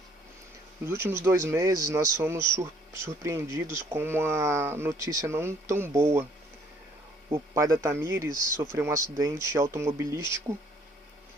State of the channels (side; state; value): both; normal; correlation 0.61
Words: Nos últimos 2 meses nós fomos surpreendidos com uma notícia não tão boa. O pai da Tamires sofreu um acidente automobilístico